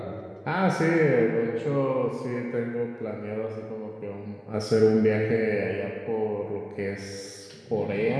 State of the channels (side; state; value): both; identical; correlation 1.00